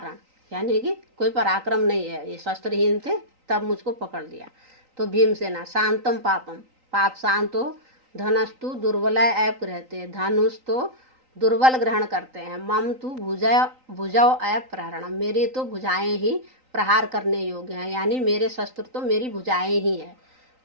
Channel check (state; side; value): late; left; 3.9 ms